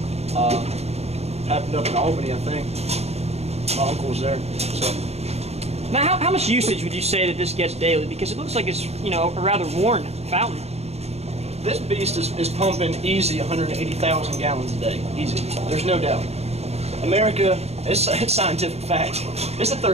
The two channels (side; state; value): left; late; 0.30 ms